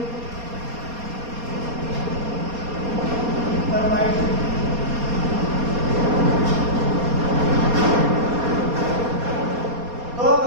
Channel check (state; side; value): late; left; 4.2 ms